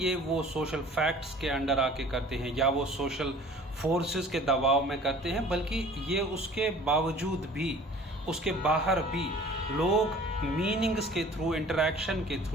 वो सोशल फैक्ट्स के अंडर आके करते हैं या वो सोशल फोर्सेस के दबाव में करते हैं, बल्कि ये उसके बावजूद भी, उसके बाहर भी लोग मीनिंग्स के थ्रू, इंटरैक्शन के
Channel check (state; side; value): normal; both; correlation 0.48